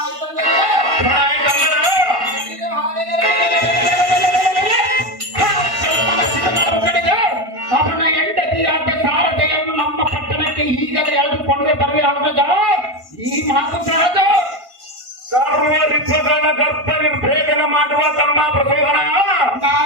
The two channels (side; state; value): left; late; 1.5 ms